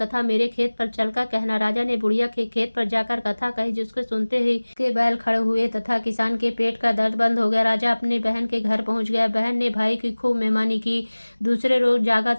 मेरे खेत पर चलकर कहना। राजा ने बुढ़िया के खेत पर जाकर कथा कही, जिसको सुनते ही के बैल खड़े हुए तथा किसान के पेट का दर्द बंद हो गया। राजा अपनी बहन के घर पहुंच गया। बहन ने भाई की खूब मेहमानी की। दूसरे रोज जागा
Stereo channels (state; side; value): inverted; both; correlation -1.00